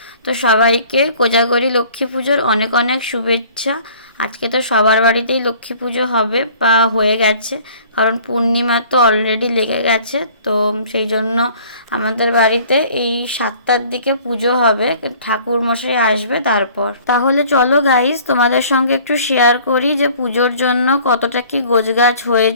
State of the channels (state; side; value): inverted; both; correlation -0.52